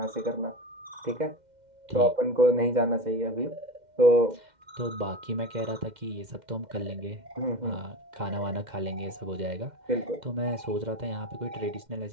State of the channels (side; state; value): left; late; 2.1 ms